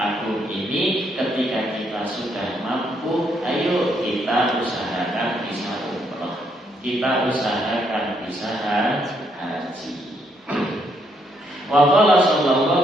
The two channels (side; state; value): both; normal; correlation 0.74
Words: ini ketika kita sudah mampu, ayo kita usahakan bisa umrah, kita usahakan bisa haji. Wa qala